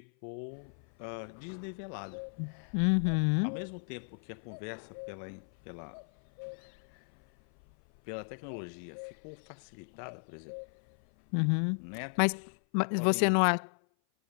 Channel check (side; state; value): right; silent; 55 dB below the other